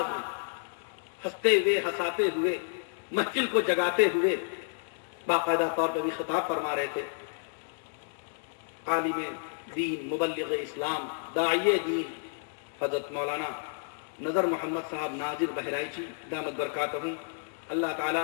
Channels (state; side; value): silent; right; digital silence